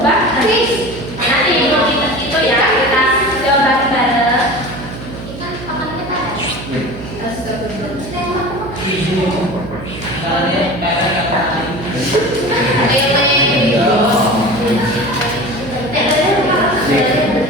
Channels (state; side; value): noise; right; hum, 11 dB below the sound